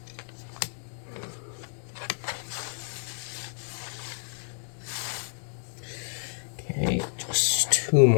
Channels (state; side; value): silent; right; digital silence